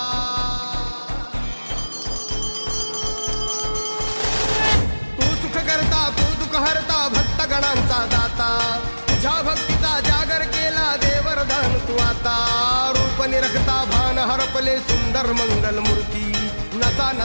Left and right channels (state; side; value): inverted; both; correlation -1.00